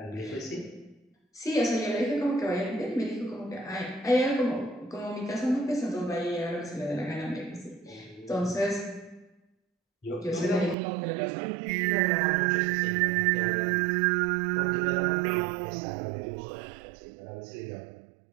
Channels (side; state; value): left; drops out; at 10.8 s